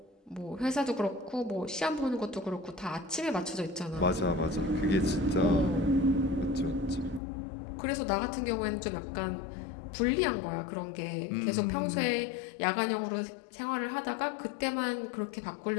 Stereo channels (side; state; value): right; drops out; at 7.2 s